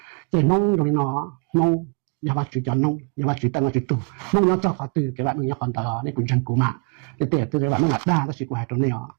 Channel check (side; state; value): left; quieter; 36.2 dB